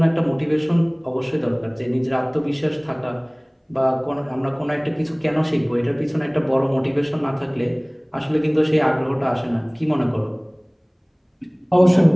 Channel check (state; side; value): identical; both; correlation 1.00